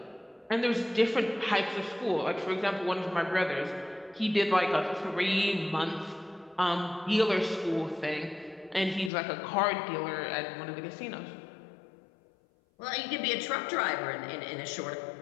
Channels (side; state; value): right; drops out; at 9.1 s